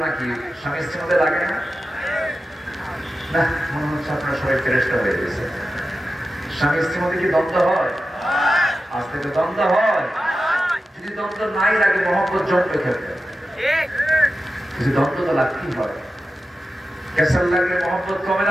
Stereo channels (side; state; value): both; normal; correlation 0.92